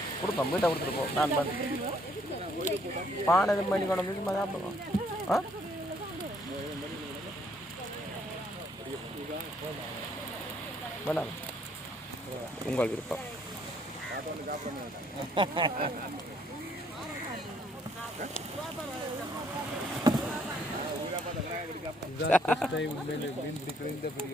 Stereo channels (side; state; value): both; normal; correlation 0.66